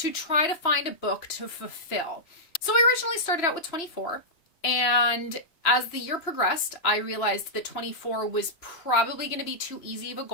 try to find a book to fulfill. So I originally started out with 24, and as the year progressed, I realized that 24 was probably going to be too easy of a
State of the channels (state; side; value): late; right; 2.9 ms